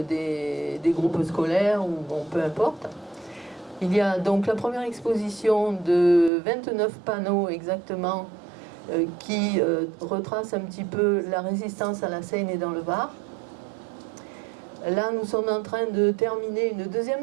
des groupes scolaires, ou bon, peu importe. Il y a donc la première exposition de 29 panneaux exactement qui retrace un petit peu la résistance à la Seine et dans le Var. Là, nous sommes en train de terminer une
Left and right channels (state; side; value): drops out; left; at 6.3 s